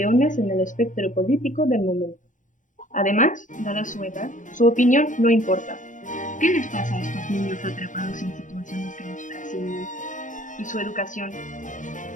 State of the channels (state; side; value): late; right; 0.37 ms